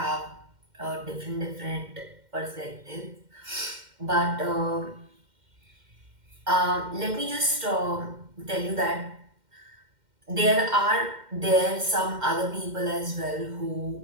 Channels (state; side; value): late; left; 2.1 ms